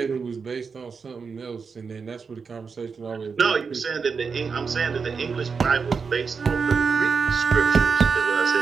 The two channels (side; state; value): left; quieter; 5.4 dB